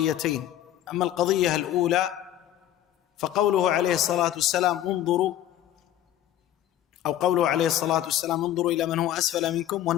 أما القضية الأولى فقوله عليه الصلاة والسلام انظروا، أو قوله عليه الصلاة والسلام انظروا إلى من هو أسفل منكم،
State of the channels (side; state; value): right; quieter; 12.2 dB